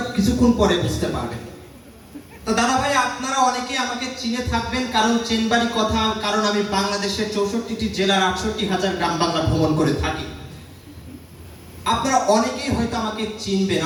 কিছুক্ষণ পরে বুঝতে পারবেন। তো দাদা ভাই, আপনারা অনেকেই আমাকে চিনে থাকবেন, কারণ চেনবাড়ি কথা, কারণ আমি বাংলাদেশের 64টি জেলার 68,000 গ্রাম বাংলা ভ্রমণ করে থাকি। আপনারা অনেকেই হয়তো আমাকে চিনবেন,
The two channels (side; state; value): both; identical; correlation 1.00